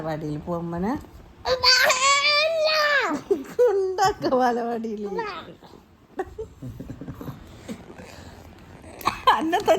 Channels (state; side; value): identical; both; correlation 1.00